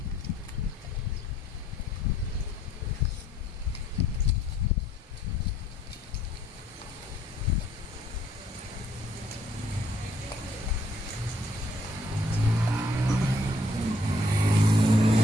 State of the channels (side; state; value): both; normal; correlation 0.66